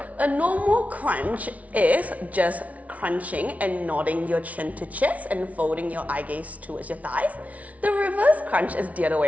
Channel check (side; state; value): left; late; 0.068 ms